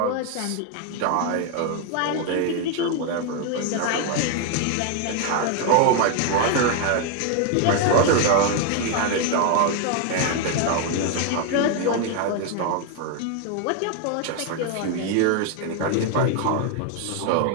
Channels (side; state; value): both; different; correlation 0.00